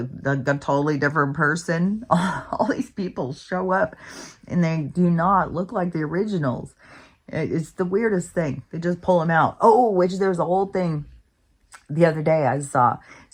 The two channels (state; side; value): identical; both; correlation 1.00